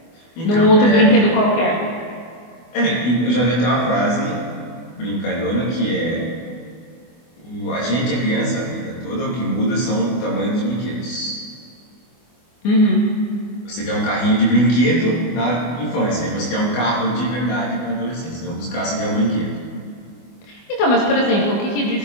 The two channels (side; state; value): right; late; 24 ms